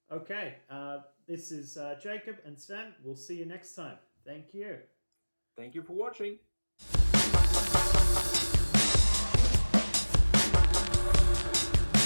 Okay, this is Jacob and Sven. We'll see you next time. Thank you. Thank you for watching.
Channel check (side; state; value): both; inverted; correlation -1.00